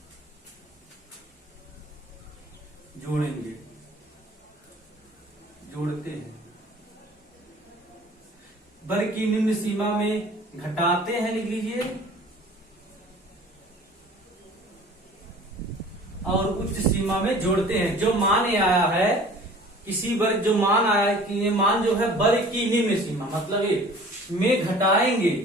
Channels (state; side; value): normal; both; correlation 0.47